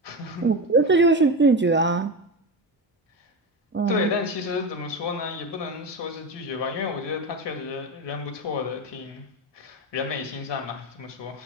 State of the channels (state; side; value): normal; both; correlation 0.19